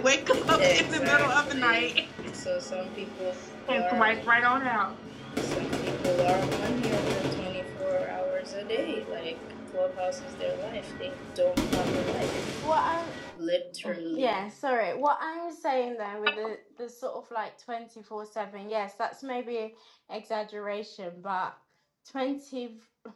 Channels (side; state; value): both; identical; correlation 1.00